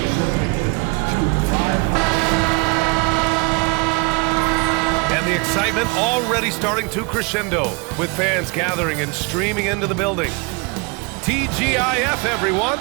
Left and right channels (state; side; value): quieter; left; 29.9 dB